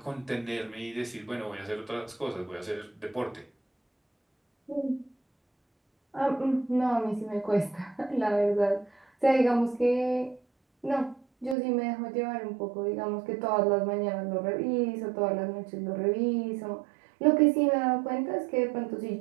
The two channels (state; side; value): drops out; left; at 11.6 s